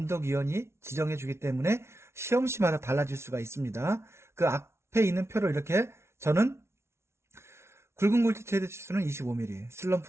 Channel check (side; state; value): left; late; 0.13 ms